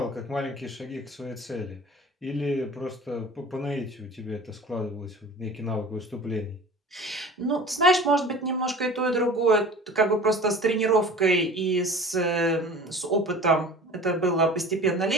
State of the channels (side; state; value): both; normal; correlation 0.41